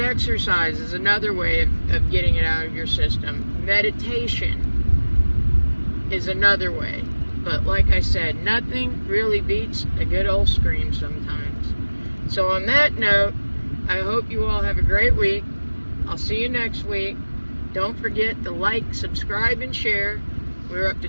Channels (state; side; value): inverted; both; correlation -1.00